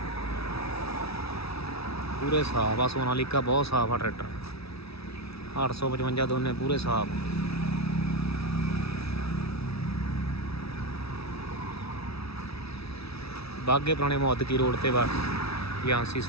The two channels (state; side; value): late; right; 0.77 ms